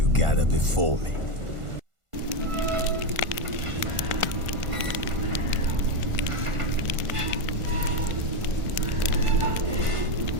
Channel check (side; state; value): left; late; 1.5 ms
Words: gather before me.